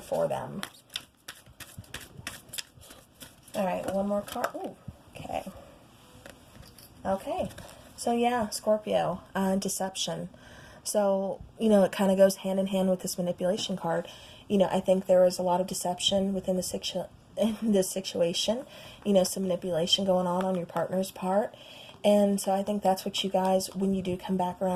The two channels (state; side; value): identical; both; correlation 1.00